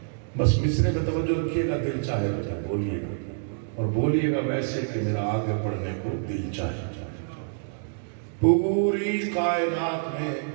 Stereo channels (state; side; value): silent; left; digital silence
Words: بس مصرے میں توجہ رکھیے گا، دل چاہے تو بولیے گا، اور بولیے گا ویسے کہ میرا آگے پڑھنے کو دل چاہے۔ پوری کائنات میں